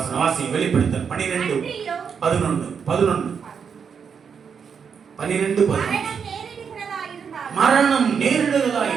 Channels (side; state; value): left; quieter; 6.6 dB